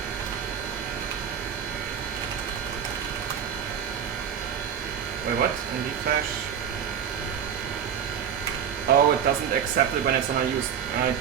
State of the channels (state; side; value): quieter; left; 8.3 dB